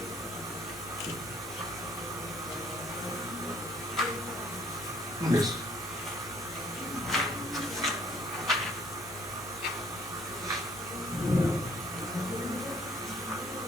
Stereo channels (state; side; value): normal; both; correlation 0.61